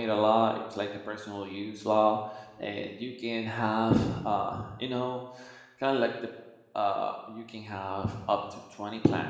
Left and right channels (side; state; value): both; identical; correlation 1.00